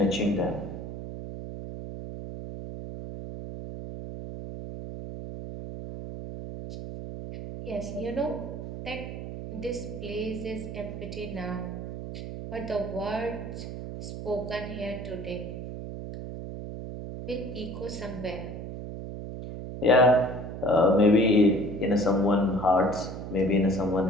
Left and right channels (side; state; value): right; noise; hum, 8 dB below the sound